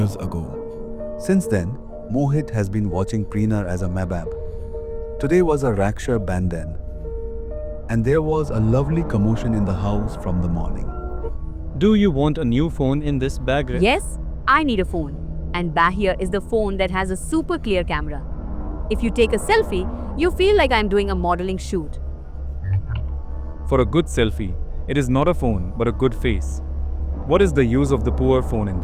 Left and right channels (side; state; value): both; identical; correlation 1.00